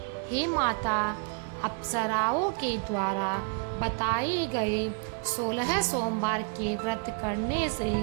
हे माता, अप्सराओं के द्वारा बताए गए 16 सोमवार के व्रत करने से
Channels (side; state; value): left; quieter; 36.8 dB